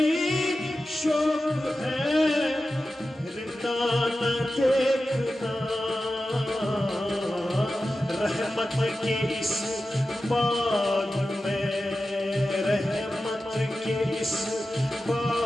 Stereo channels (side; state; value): both; normal; correlation 0.93